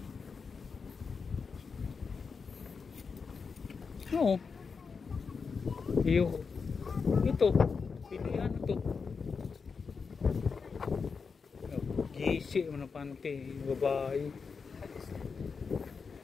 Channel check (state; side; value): quieter; right; 5.3 dB